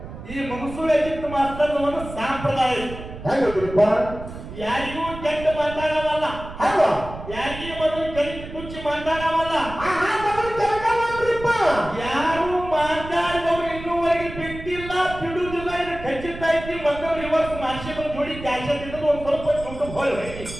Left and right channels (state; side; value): noise; right; rumble, 12 dB below the sound